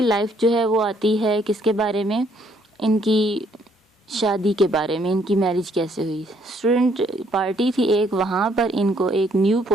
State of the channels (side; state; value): both; normal; correlation 0.67